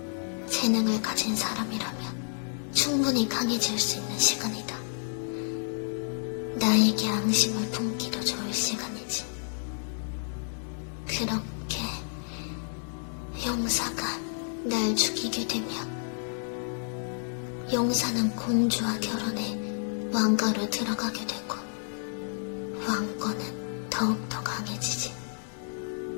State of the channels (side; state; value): right; silent; digital silence